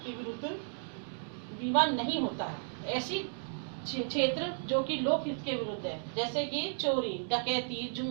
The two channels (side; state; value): left; silent; digital silence